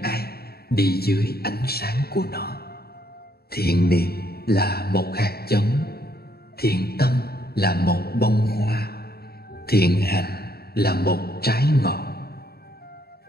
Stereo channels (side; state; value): right; late; 0.46 ms